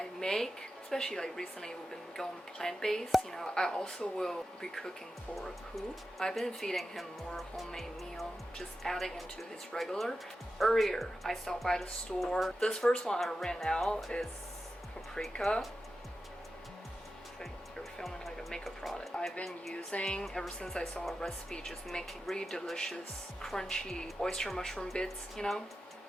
make, especially like recently we've been going plant-based, you know, I also will be cooking for Pooh. I've been feeding him more homemade meal, just adding into his regular. Earlier, I stopped by the store. This first one I ran out is Pacifica. They're filming like a makeup product. I've been using, ever since I saw a recipe, just making really delicious, crunchy oyster mushroom bits, you know?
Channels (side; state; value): both; normal; correlation 0.91